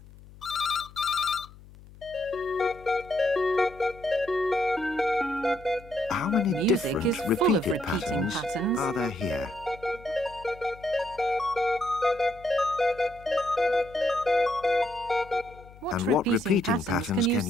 How many Music different is full of repeated repeating patterns patterns. are there here? And what repeating patterns can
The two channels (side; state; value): left; noise; hum, 21 dB below the sound